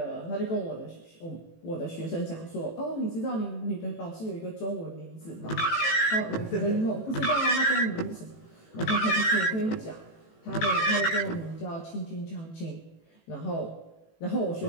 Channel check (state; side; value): late; right; 18 ms